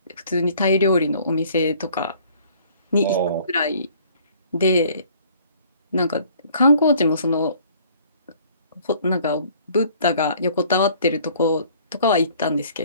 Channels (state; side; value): inverted; both; correlation -0.56